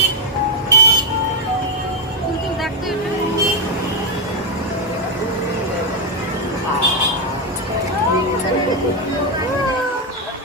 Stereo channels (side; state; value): both; normal; correlation 0.04